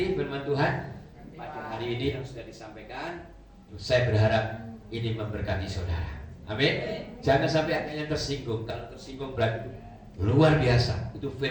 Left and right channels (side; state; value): both; identical; correlation 1.00